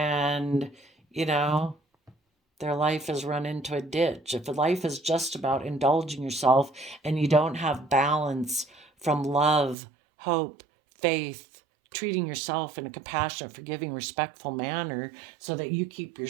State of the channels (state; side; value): drops out; left; at 9.8 s